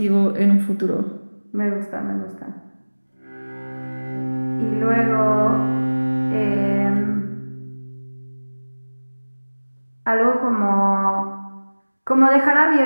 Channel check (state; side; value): inverted; both; correlation -1.00